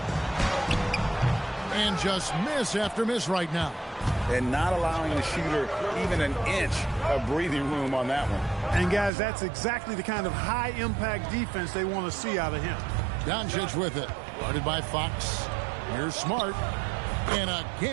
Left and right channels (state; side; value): drops out; left; at 9.1 s